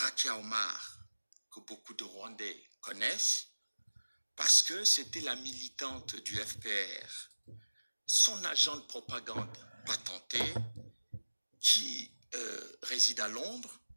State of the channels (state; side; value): inverted; both; correlation -1.00